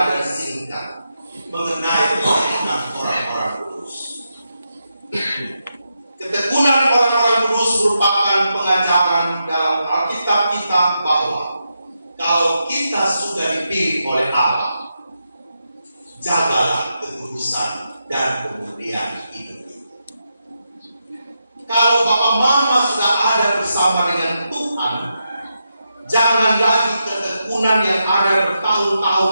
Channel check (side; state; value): both; inverted; correlation -0.85